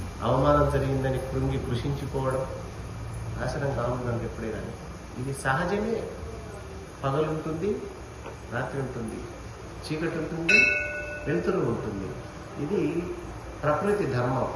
అవమానం జరిగిందని కృషించిపోవడం నాశనం కావుందండి ఎప్పుడే కానీ. ఇది సహజమే. పగలుంటుంది, రాత్రి ఉంటుంది, చీకటి ఉంటుంది, వెలుతురు ఉంటుంది. ఇది ప్రకృతి ధర్మం.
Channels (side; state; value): both; identical; correlation 1.00